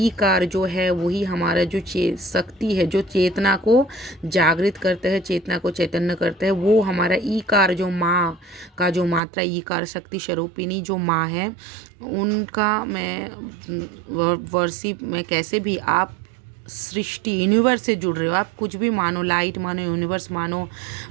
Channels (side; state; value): left; drops out; at 9.2 s